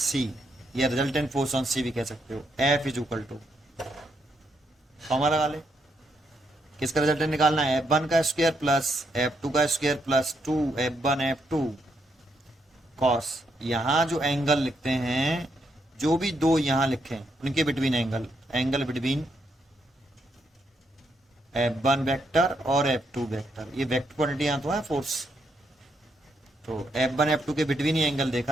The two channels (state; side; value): normal; both; correlation 0.77